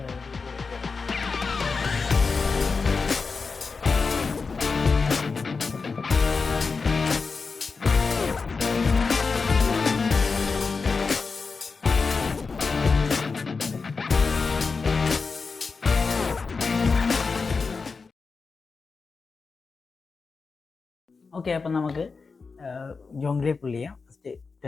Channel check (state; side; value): quieter; right; 4.6 dB